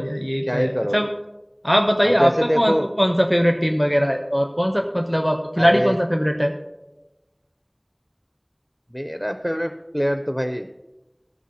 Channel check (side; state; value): both; identical; correlation 1.00